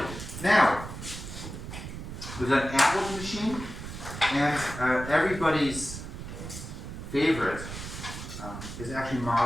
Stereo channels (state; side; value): noise; right; rumble, 9 dB below the sound